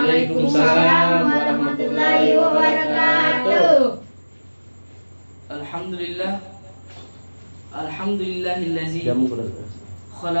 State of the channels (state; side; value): inverted; both; correlation -1.00